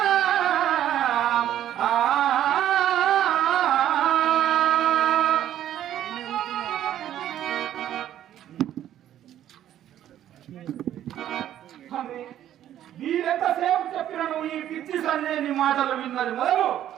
వీరెంతసేపు చెప్పినను ఈ పిచ్చి సంజయని మాటలు విన్నది మొదలు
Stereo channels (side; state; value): left; quieter; 11.6 dB